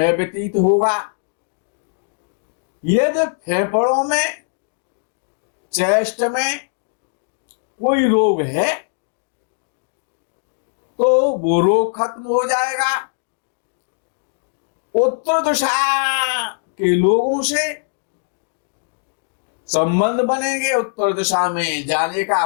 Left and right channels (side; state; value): right; silent; digital silence